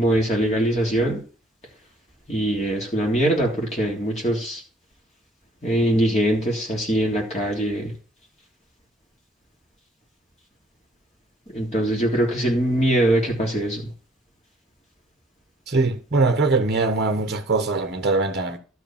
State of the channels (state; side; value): normal; both; correlation 0.58